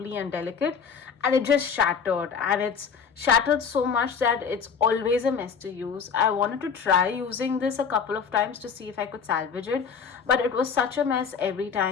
and delicate, and it just shattered, and it's shattered so much that it's always a mess to use. I wanted to try using this a couple of times to see if I could salvage it, but it was such a mess every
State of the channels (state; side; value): quieter; right; 6.4 dB